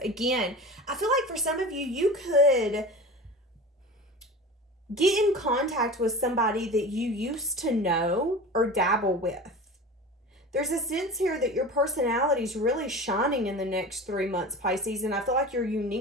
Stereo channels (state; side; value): normal; both; correlation 0.33